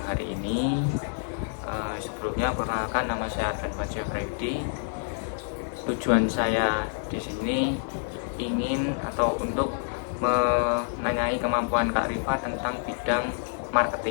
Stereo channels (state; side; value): silent; right; 60 dB below the other